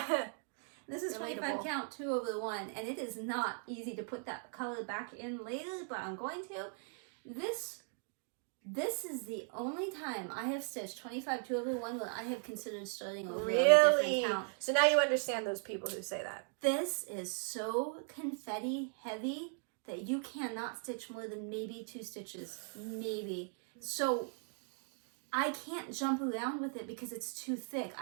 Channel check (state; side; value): silent; left; 52 dB below the other